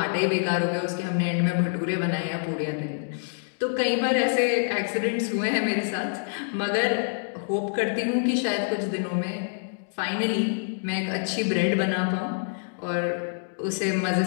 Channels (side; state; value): right; silent; digital silence